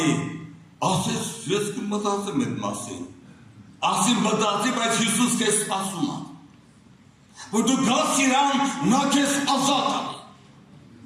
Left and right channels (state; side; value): identical; both; correlation 1.00